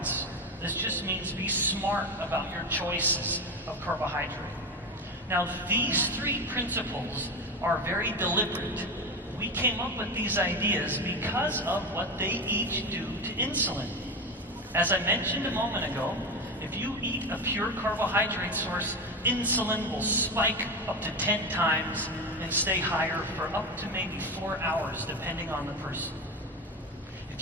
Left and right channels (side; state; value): both; normal; correlation 0.20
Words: This just means be smart about your choices of carbohydrate. Now, these 3 principles are very deliberate. We came up with these ideas because of what they each do to insulin. As I mentioned a moment ago, if you eat a pure carbohydrate source, insulin will spike up to 10 times and stay higher for up to maybe 4 hours, depending on the person.